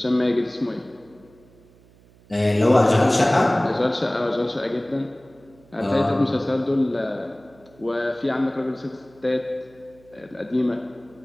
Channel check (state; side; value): noise; right; hum, 28 dB below the sound